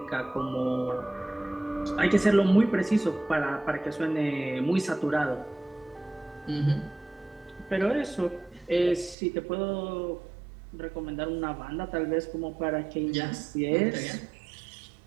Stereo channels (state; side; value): drops out; left; at 9.2 s